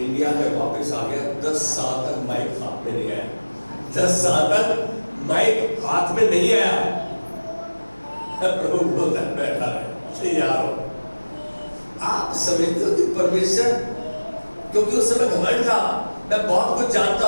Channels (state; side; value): inverted; both; correlation -1.00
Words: में वापस आ गया, 10 साल तक माइक हाथ में नहीं आया, 10 साल तक माइक हाथ में नहीं आया। प्रभु बोलता है बैठा रहे यार, आप समझते हो कि परमेश्वर, क्योंकि उस समय घमंड था, मैं बहुत कुछ जानता